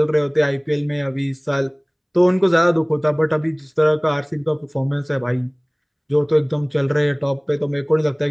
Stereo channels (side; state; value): both; identical; correlation 1.00